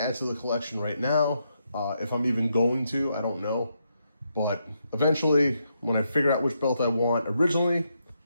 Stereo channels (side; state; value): both; inverted; correlation -0.81